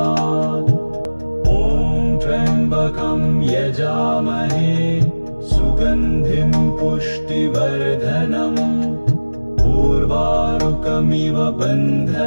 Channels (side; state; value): both; inverted; correlation -1.00